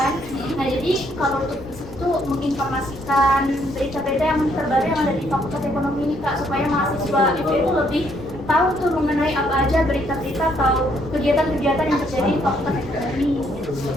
Nah jadi kalau untuk visi itu menginformasikan berita-berita yang terbaru yang ada di Fakultas Ekonomi ini Kak, supaya mahasiswa itu lebih tahu tuh mengenai apa aja berita-berita atau kegiatan-kegiatan yang terjadi di Fakultas Ekonomi.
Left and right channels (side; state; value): left; noise; rumble, 19 dB below the sound